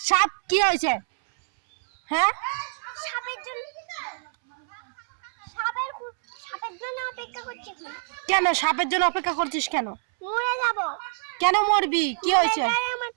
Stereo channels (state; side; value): silent; left; 61 dB below the other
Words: সাপ কি হয়েছে? হ্যাঁ, সাপের জন্য। সাপের জন্য অপেক্ষা করছি। কেন সাপের জন্য অপেক্ষা করছিস কেন? মরে যাব। কেন মরবি? কি হয়েছে? আমার